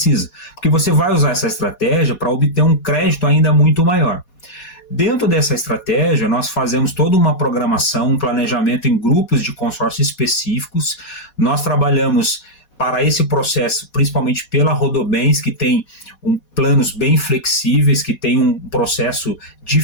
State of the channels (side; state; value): right; late; 4.2 ms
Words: porque você vai usar essa estratégia para obter um crédito ainda muito maior. Dentro dessa estratégia, nós fazemos toda uma programação, um planejamento em grupos de consórcio específicos. Nós trabalhamos para esse processo, principalmente pela Rodobens, que tem planos bem flexíveis, que tem um processo